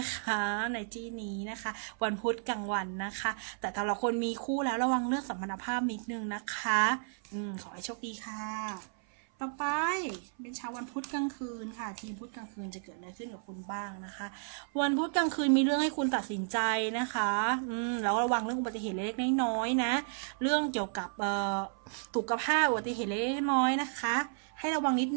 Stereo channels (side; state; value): left; silent; 56 dB below the other